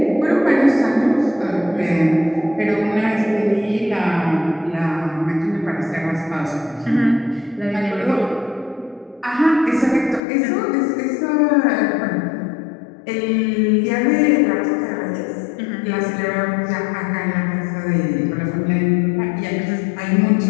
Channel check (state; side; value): drops out; right; at 10.2 s